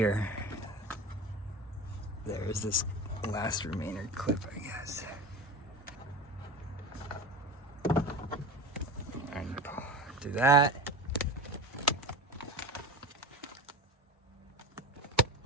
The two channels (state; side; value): normal; both; correlation 0.30